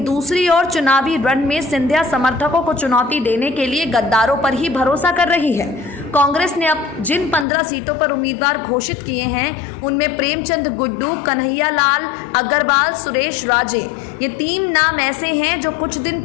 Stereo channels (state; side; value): drops out; right; at 7.5 s